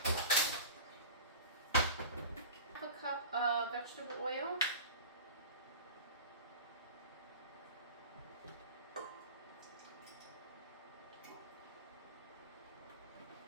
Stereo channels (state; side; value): inverted; both; correlation -0.34